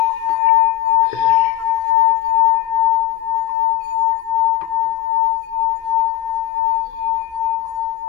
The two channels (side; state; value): right; quieter; 13.7 dB